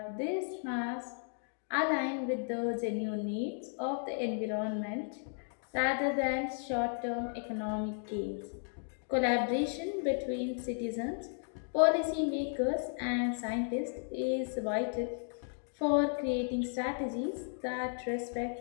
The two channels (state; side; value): silent; right; 55 dB below the other